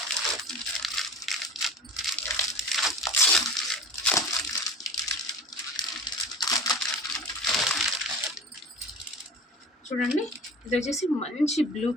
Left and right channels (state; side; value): normal; both; correlation 0.36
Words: చూడండి, ఇది వచ్చేసి మంచి బ్లూ